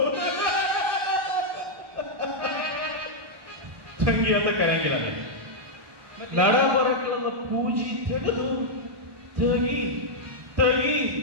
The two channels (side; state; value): left; late; 1.2 ms